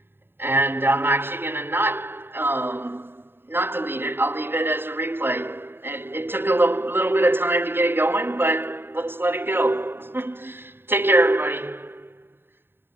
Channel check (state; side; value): late; left; 0.11 ms